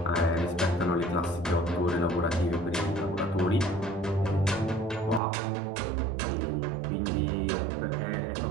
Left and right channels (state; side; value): drops out; left; at 5.2 s